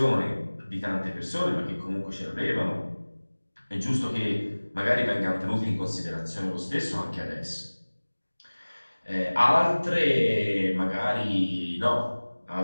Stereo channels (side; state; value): both; inverted; correlation -1.00